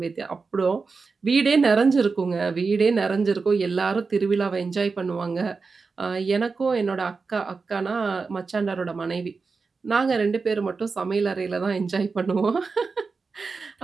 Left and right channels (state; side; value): quieter; left; 4.6 dB